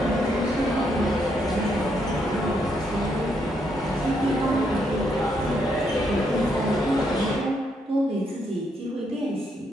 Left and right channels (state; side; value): normal; both; correlation 0.76